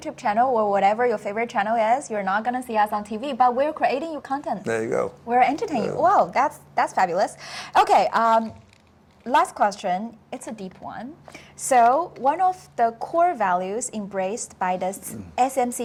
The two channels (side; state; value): both; identical; correlation 1.00